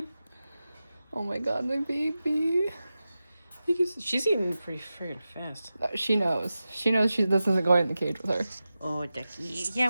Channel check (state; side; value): inverted; both; correlation -0.94